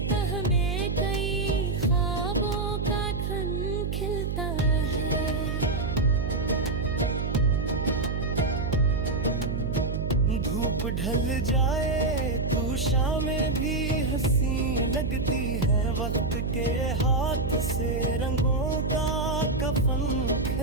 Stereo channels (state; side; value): noise; right; hum, 1 dB below the sound